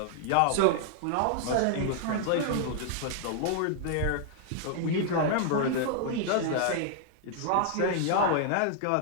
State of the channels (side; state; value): both; different; correlation -0.01